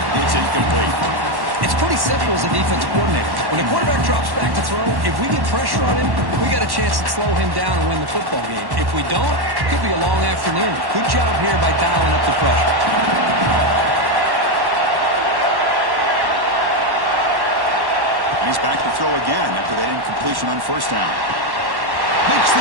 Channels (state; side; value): late; left; 1.1 ms